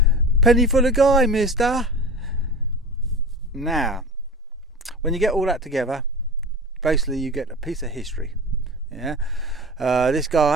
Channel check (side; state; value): both; normal; correlation 0.33